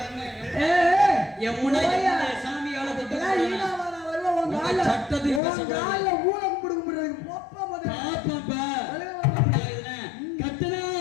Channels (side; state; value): right; drops out; at 5.4 s